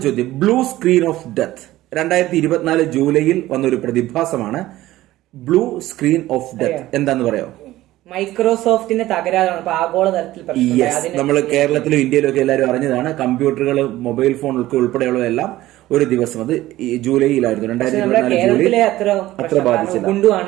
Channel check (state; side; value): quieter; left; 15.9 dB